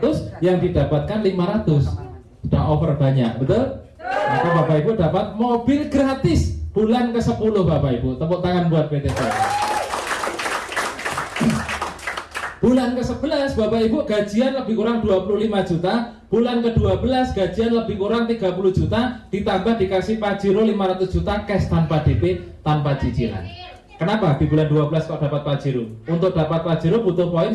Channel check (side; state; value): both; identical; correlation 1.00